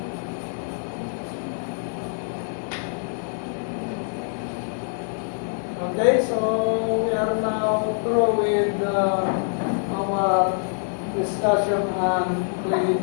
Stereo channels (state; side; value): silent; right; 62 dB below the other